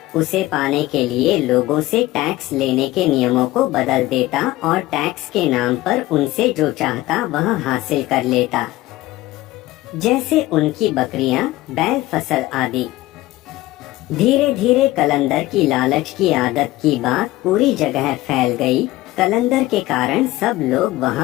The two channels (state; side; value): quieter; right; 17.5 dB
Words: उसे पाने के लिए लोगों से टैक्स लेने के नियमों को बदल देता और टैक्स के नाम पर उनसे जो चाहता वह हासिल कर लेता, जैसे उनकी बकरियां, बैल, फसल आदि। धीरे धीरे कलंदर की लालच की आदत की बात पूरी जगह फैल गई। कलंदर के कारण सब लोग